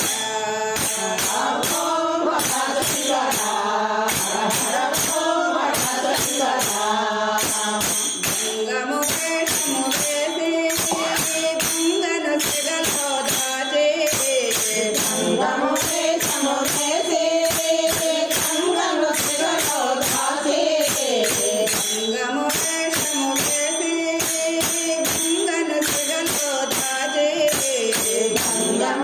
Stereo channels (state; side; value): identical; both; correlation 1.00